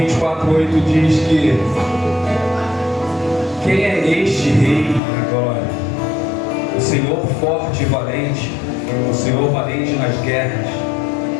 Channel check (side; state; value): right; drops out; at 5.0 s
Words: diz que quem é este rei da glória? O Senhor forte e valente, o Senhor valente nas guerras.